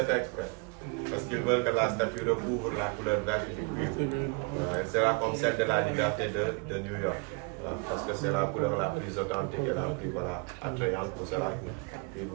fait exprès. Parce qu'ils veulent que la statue recouvre la couleur verte du cuivre. Elle sera comme celle de la liberté de New York. Parce que c'est la couleur la plus authentique et la plus attrayante pour cela.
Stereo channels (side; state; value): left; quieter; 31.0 dB